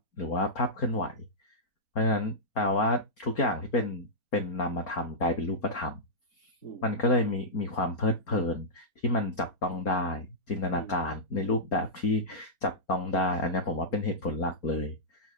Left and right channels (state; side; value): late; right; 4.3 ms